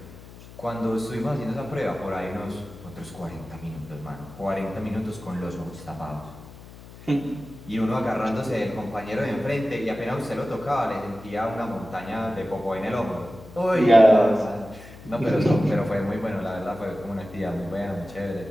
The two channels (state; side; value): noise; left; hum, 18 dB below the sound